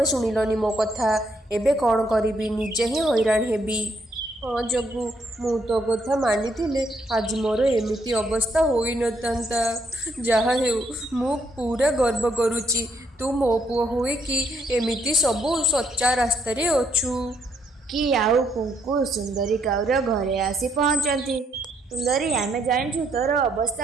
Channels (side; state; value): both; normal; correlation 0.73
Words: ଶୁଣିଲନି ମୋ କଥା। ଏବେ କ'ଣ କରିବି? ନିଜେ ହିଁ ହଇରାଣ ହେବି। ହଁ ଜଗୁ, ମୁଁ ତୋ କଥା ମାନିଥିଲେ ଆଜି ମୋର ଏମିତି ଅବସ୍ଥା ହୋଇନଥାନ୍ତା। ଯାହା ହେଉ ମୁଁ ପୁରା ଗର୍ବ କରୁଛି, ତୁ ମୋ ପୁଅ ହୋଇକି ଏମିତି ସବୁ ସଚ୍ଚା ରାସ୍ତାରେ ଅଛୁ। କି ଆଉ କୁଙ୍କୁ ସୁନ୍ଦରୀ କାଉର ଘରେ ଆସି ପହଞ୍ଚନ୍ତି। ସୁନ୍ଦରୀ, ଆମେ ଜାଣିଛୁ ତୋର ଅବସ୍ଥା